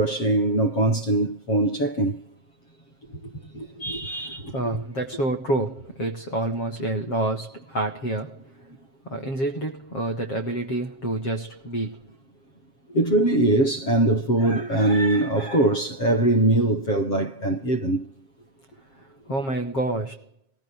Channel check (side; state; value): right; late; 7.5 ms